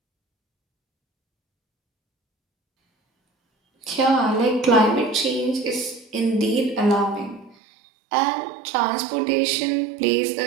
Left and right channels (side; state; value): left; drops out; at 7.6 s